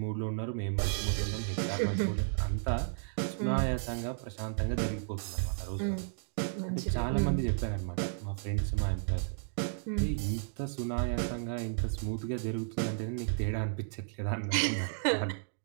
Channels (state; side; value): silent; left; digital silence